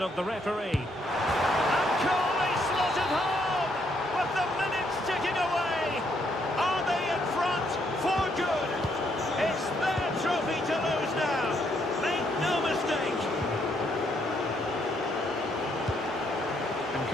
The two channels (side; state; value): both; normal; correlation 0.73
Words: of the referee. And Coley slotted home! With the minutes ticking away! Are they in front for good? It's their trophy to lose now! Make no mistake!